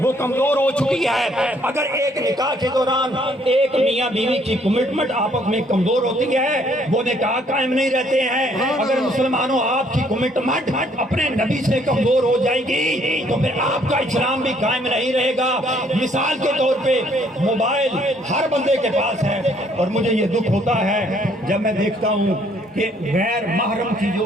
وہ کمزور ہو چکی ہے۔ اگر ایک نکاح کے دوران ایک میاں بیوی کی کمٹمنٹ آپس میں کمزور ہوتی ہے وہ نکاح قائم نہیں رہتے ہیں۔ اگر مسلمانوں آپ کی کمٹمنٹ اپنے نبی سے کمزور ہو جائے گی تو پھر آپ کا اسلام بھی قائم نہیں رہے گا۔ مثال کے طور پہ موبائل ہر بندے کے پاس ہے، اور مجھے یہ دکھ ہوتا ہے جب میں دیکھتا ہوں کہ غیر محرم کی جو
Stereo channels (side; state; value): both; normal; correlation 0.65